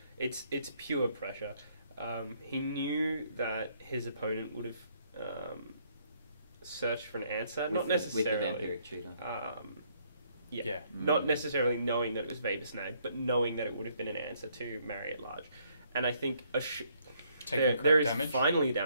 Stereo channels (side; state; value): both; inverted; correlation -0.68